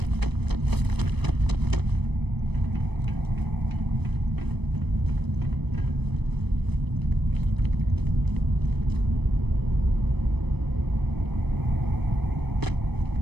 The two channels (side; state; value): left; late; 0.99 ms